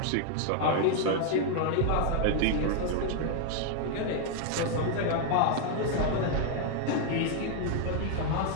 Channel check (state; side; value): different; both; correlation 0.00